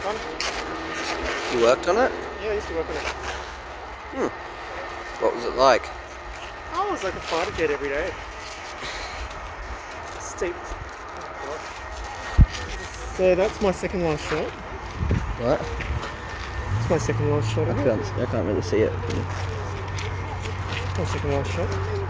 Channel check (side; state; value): both; identical; correlation 1.00